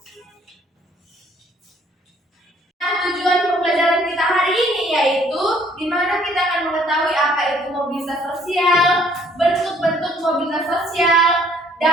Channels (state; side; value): normal; both; correlation 0.61